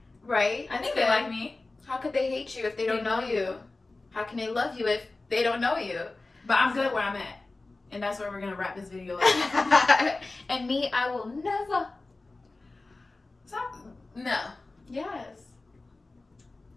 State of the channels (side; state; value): right; quieter; 3.3 dB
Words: Right? I think they like me. How could they hate you if they don't know you? How can they love you if they don't know you? But I'm good where I'm at. And that's where we're going to wrap this video up. And me, I will never. Stop. No. Yes.